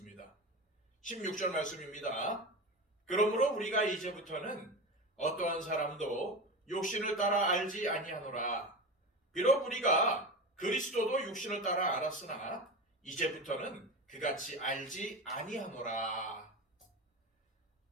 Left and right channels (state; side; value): normal; both; correlation 0.25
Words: 16절 말씀입니다. 그러므로 우리가 이제부터는 어떠한 사람도 육신을 따라 알지 아니하노라. 비록 우리가 그리스도도 육신을 따라 알았으나 이제부터는 그같이 알지 아니하노라.